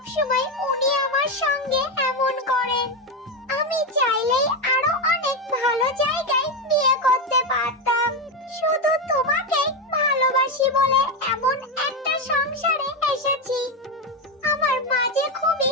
সময় উনি আমার সঙ্গে এমন করেন? আমি চাইলেই আরো অনেক ভালো জায়গায় বিয়ে করতে পারতাম। শুধু তোমাকে ভালোবাসি বলে এমন একটা সংসারে এসেছি। আমার মা যে খুবই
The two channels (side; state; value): both; normal; correlation 0.10